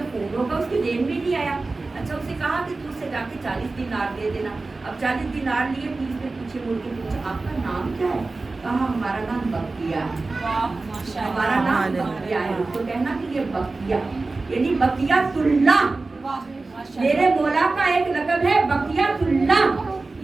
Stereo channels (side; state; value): left; quieter; 3.5 dB